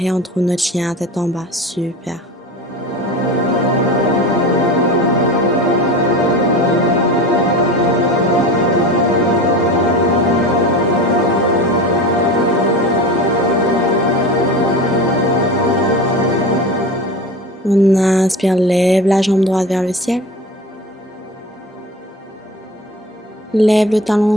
on trouve notre chien tête en bas. Super. On inspire, lève la jambe droite vers le ciel. Lève le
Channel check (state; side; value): normal; both; correlation 0.31